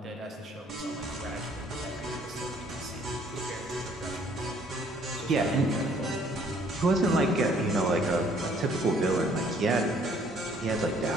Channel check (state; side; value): normal; both; correlation 0.61